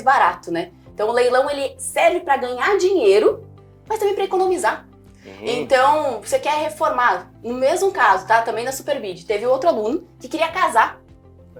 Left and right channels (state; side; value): identical; both; correlation 1.00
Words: barato, né? Então o leilão, ele serve para ganhar dinheiro, mas também para economizar. Então, você quer reformar. No mesmo caso, tá? Também na Superbid, teve outro aluno que queria casar.